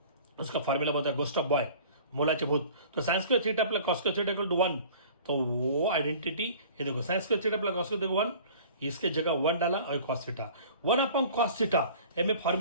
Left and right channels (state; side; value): inverted; both; correlation -0.46